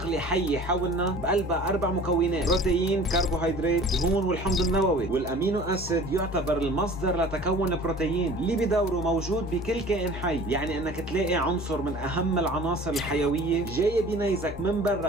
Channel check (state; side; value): normal; both; correlation 0.45